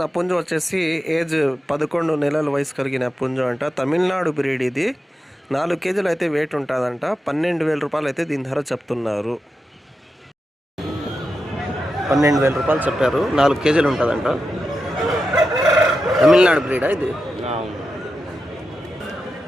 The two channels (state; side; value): normal; both; correlation 0.89